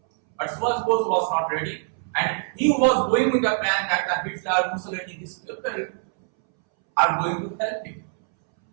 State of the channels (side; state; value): left; silent; 63 dB below the other